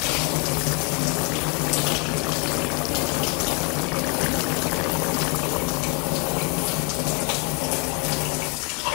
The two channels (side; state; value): right; quieter; 30.0 dB